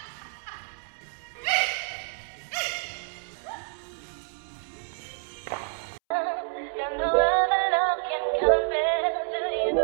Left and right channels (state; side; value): silent; left; 59 dB below the other